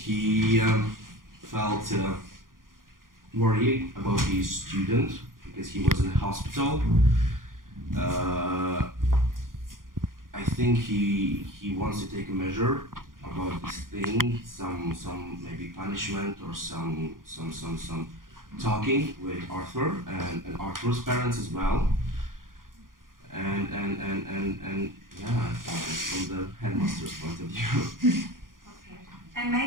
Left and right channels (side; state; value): left; late; 0.90 ms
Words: felt worried about his student because he was in the hospital. I think he wants to take a measure about this thing, some maybe punishment or some talking with Arthur and Arthur's parents as well. And yeah, I think that's from the headmaster's point of view. Okay. And